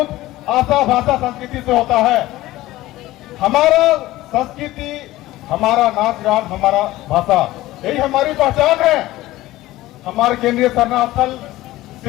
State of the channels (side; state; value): right; quieter; 16.9 dB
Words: आशा भाषा संस्कृति से होता है। हमारा संस्कृति, हमारा नाच गान, हमारा भाषा, यही हमारी पहचान है। हमारे केंद्रीय शरणार्थल